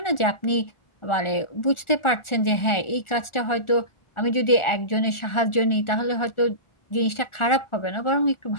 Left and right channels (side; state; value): right; late; 1.4 ms